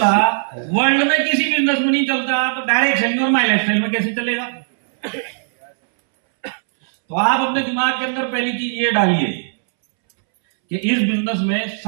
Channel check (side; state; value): left; silent; 67 dB below the other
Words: वर्ल्ड में किसी बिजनेस में नहीं चलता, तो डायरेक्ट सेलिंग और माई लाइफस्टाइल में कैसे चलेगा? तो आप अपने दिमाग के अंदर पहली चीज ये डालिए कि इस बिजनेस में